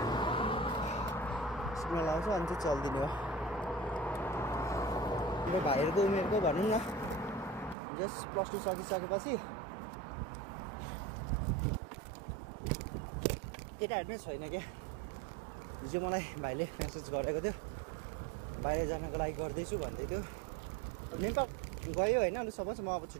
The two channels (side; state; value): left; drops out; at 7.8 s